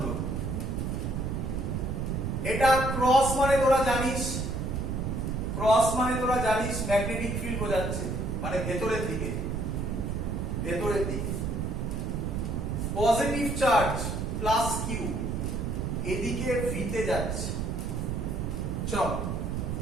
এটা ক্রস মানে তোরা জানিস, ক্রস মানে তোরা জানিস ম্যাগনেটিক ফিল্ড বোঝাচ্ছে, মানে ভেতরের দিকে, ভেতরের দিকে। পজিটিভ চার্জ প্লাস কিউ এদিকে ভিতে যাচ্ছে। চল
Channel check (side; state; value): right; noise; rumble, 1 dB below the sound